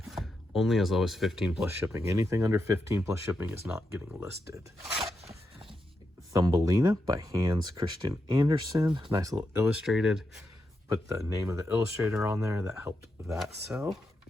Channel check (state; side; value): normal; both; correlation 0.85